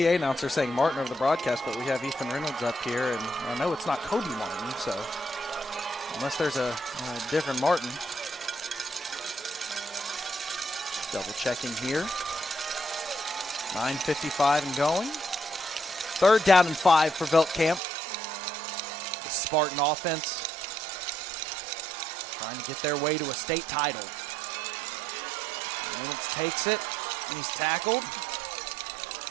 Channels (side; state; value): left; drops out; at 17.8 s